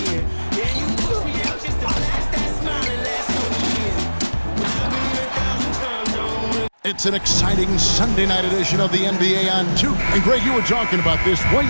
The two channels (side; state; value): both; inverted; correlation -1.00